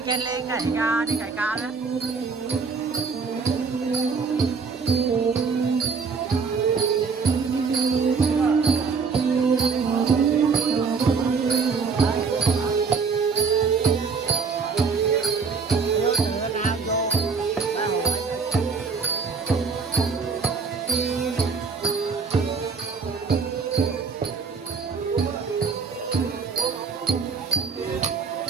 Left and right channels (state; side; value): quieter; left; 5.0 dB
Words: trên lên cày ca đi cày ca đó.